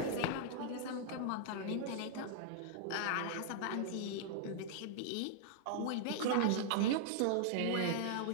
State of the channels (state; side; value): different; both; correlation -0.01